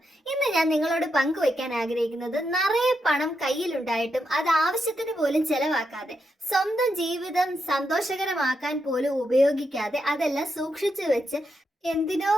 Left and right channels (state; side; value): normal; both; correlation 0.83